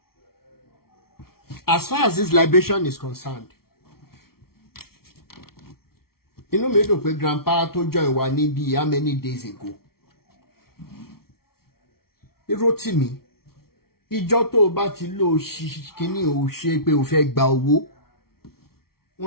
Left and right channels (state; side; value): late; right; 0.94 ms